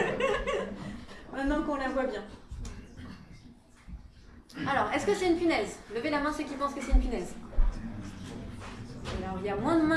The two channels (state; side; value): identical; both; correlation 1.00